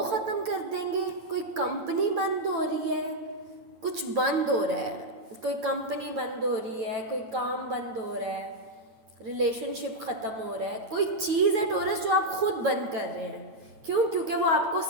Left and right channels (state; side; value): late; left; 8.9 ms